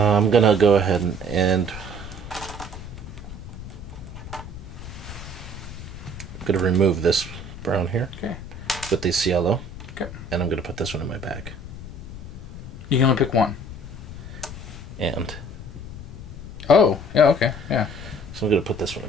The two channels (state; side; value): noise; left; rumble, 11 dB below the sound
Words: gonna go ahead and I'm gonna remove this brown here. Okay. With this yellow. Okay. And I'm gonna put this one in my bag. You can only pick one. And. Oh, yeah, okay, yeah. So I'm gonna put this one